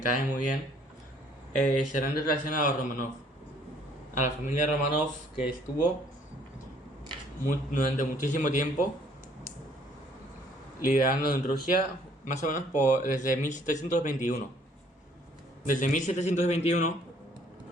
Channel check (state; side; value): normal; both; correlation 0.61